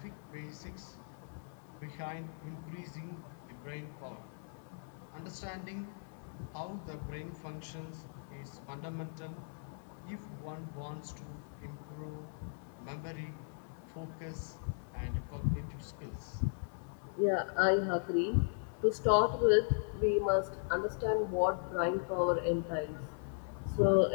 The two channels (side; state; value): right; silent; 53 dB below the other